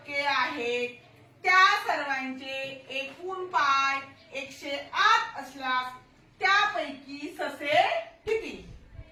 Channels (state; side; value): identical; both; correlation 1.00